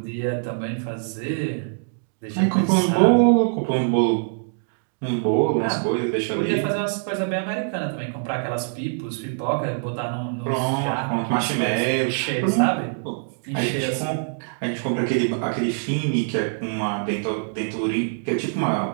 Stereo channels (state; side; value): silent; left; digital silence